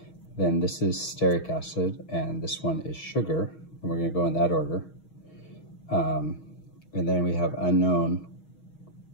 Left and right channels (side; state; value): right; late; 6.3 ms